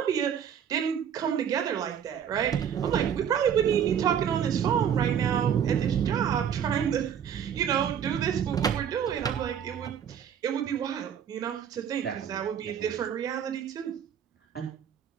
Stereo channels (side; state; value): left; quieter; 8.5 dB